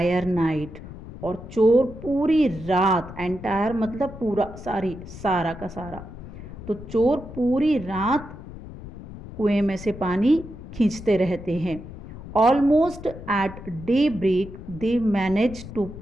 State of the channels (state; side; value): noise; left; rumble, 13 dB below the sound